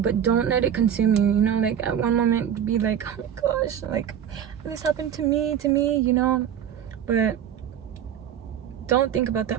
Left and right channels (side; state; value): left; quieter; 9.3 dB